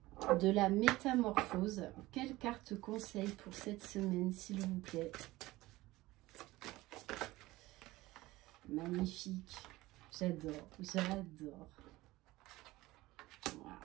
de la métamorphose. Quelle carte conseil pour cette semaine, s'il vous plaît? Magnifique. J'adore, j'adore. Wow,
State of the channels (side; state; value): left; quieter; 18.7 dB